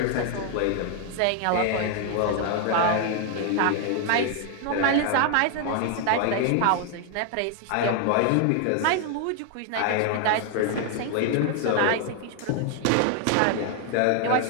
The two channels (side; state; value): both; different; correlation 0.00